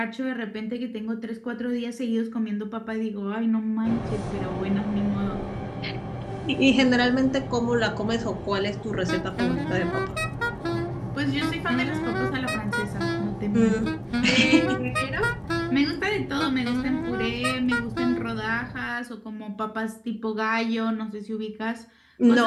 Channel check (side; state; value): both; identical; correlation 1.00